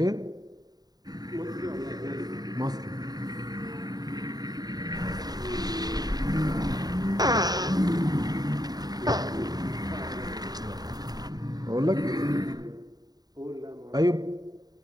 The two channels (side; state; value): left; late; 0.19 ms